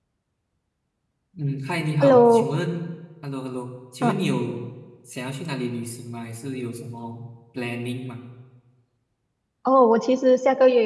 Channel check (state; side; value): identical; both; correlation 1.00